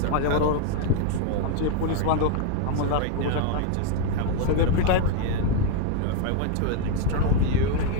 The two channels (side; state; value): both; different; correlation 0.01